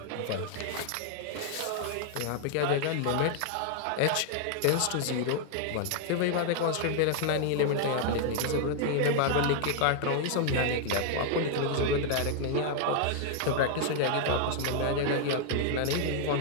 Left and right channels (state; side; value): different; both; correlation 0.00